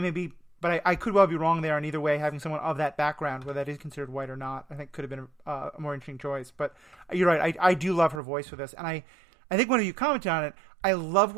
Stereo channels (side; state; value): left; drops out; at 8.2 s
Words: maybe. But I could well be wrong there. And either way, having someone of that background, whether that is considered white or not, I think could have been a more interesting choice. But you're right. I do love her voice for this, and I think one of you commented on it. I love